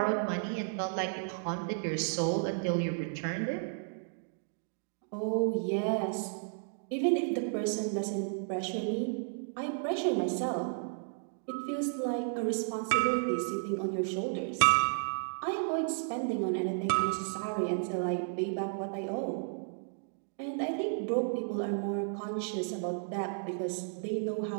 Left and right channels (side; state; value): left; silent; digital silence